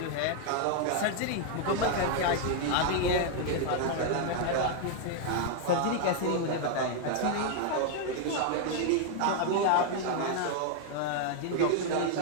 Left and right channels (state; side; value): different; both; correlation 0.00